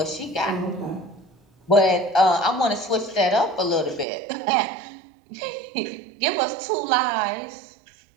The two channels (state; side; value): drops out; left; at 4.0 s